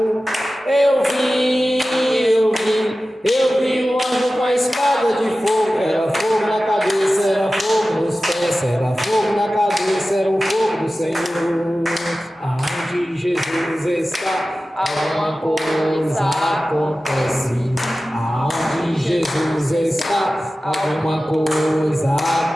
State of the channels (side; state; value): both; normal; correlation 0.95